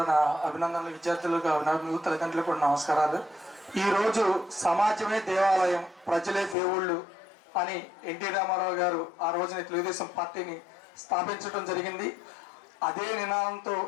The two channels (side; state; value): right; drops out; at 6.6 s